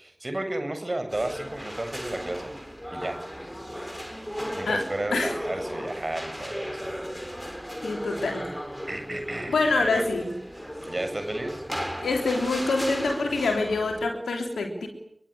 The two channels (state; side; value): normal; both; correlation 0.93